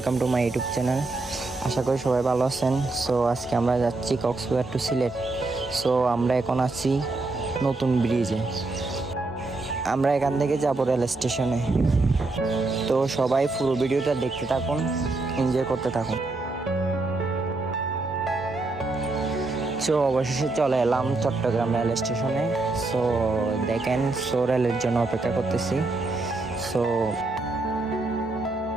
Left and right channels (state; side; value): quieter; left; 3.3 dB